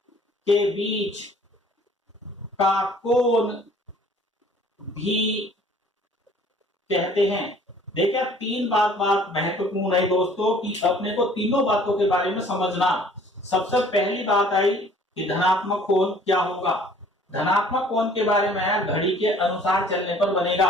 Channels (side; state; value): both; normal; correlation 0.54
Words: के बीच का कोण भी कहते हैं। देखिए, 3 बात महत्वपूर्ण है दोस्तों कि अपने को तीनों बातों के बारे में समझना। सबसे पहली बात आई कि धनात्मक कोण क्या होगा। धनात्मक कोण के बारे में, घड़ी के अनुसार चलने पर